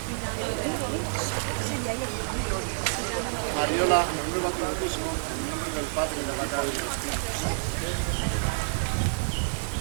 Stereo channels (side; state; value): left; silent; 59 dB below the other